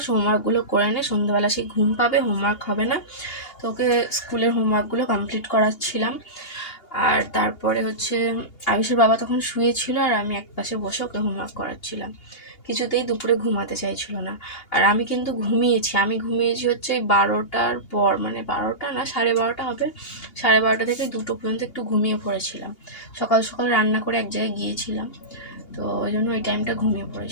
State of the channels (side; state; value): right; late; 2.8 ms